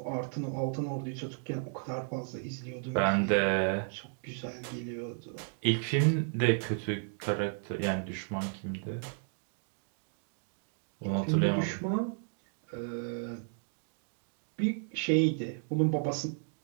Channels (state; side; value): silent; left; 55 dB below the other